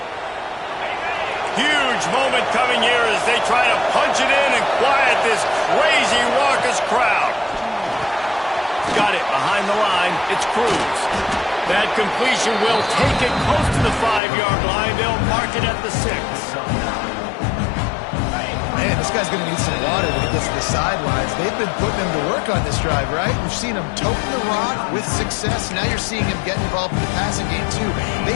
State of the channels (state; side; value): drops out; right; at 14.2 s